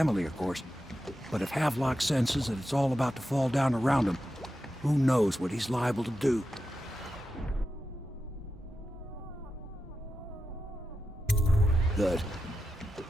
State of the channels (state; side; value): normal; both; correlation 0.90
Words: of course. But if Havelock senses that it's all about to fall down around him, who knows what he's liable to do. Good.